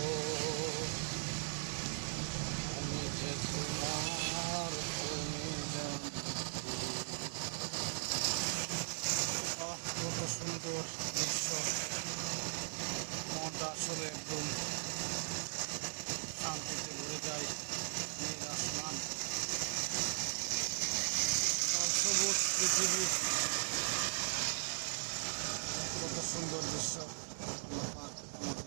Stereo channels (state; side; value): silent; left; digital silence